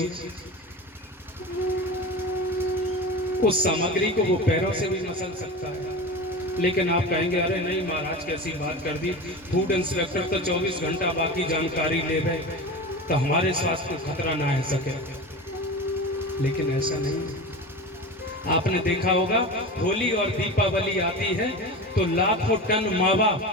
उस सामग्री को वो पैरों से भी मसल सकता है, लेकिन आप कहेंगे अरे नहीं महाराज कैसी बात कर दी, फूड इंस्पेक्टर तो 24 घंटा बाकी जानकारी ले गए तो हमारे स्वास्थ्य को खतरा ना आ सके। लेकिन ऐसा नहीं है। आपने देखा होगा होली और दीपावली आती है तो लाखों टन मावा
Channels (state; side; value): normal; both; correlation 0.28